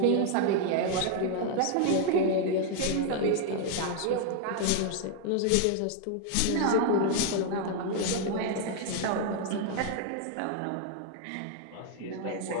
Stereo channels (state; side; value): different; both; correlation 0.00